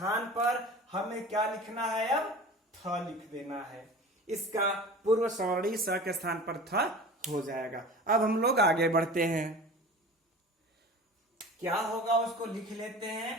पर हमें क्या लिखना है, अब थ लिख देना है। इसका पूर्व सवर्णी स के स्थान पर थ हो जाएगा। अब हम लोग आगे बढ़ते हैं, क्या होगा उसको लिख लेते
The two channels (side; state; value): both; normal; correlation 0.38